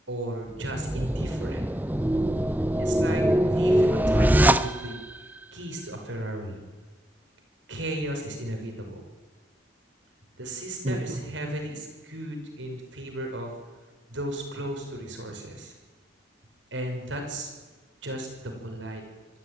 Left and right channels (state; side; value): normal; both; correlation 0.80